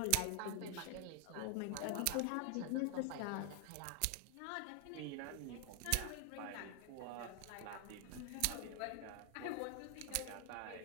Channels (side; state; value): both; different; correlation 0.00